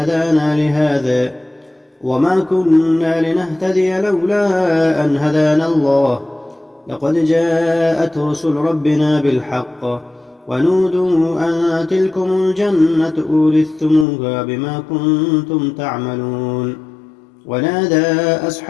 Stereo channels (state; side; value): drops out; right; at 14.1 s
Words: لهذا وما كنا لنهتدي لولا أن هدانا الله لقد جاءت رسل ربنا بالحق ونودوا أن تلكم الجنة أورثتموها بما كنتم تعملون ونادى